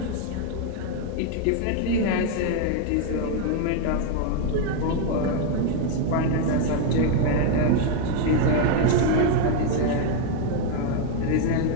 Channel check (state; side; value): different; both; correlation 0.01